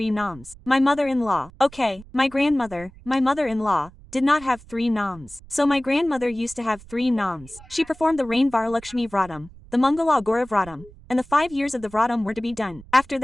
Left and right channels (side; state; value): right; noise; rumble, 21 dB below the sound